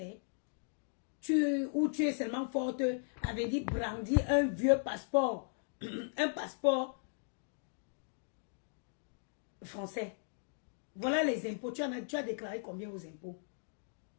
Ou tu es seulement forte, avait dit brandir un vieux passeport. Un passeport français. Voilà les impôts. Tu as déclaré combien aux impôts?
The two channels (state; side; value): silent; right; digital silence